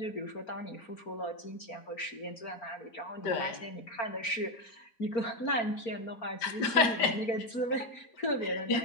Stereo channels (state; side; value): late; right; 4.4 ms